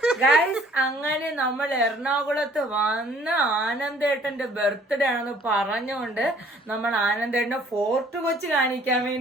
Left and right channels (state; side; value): normal; both; correlation 0.57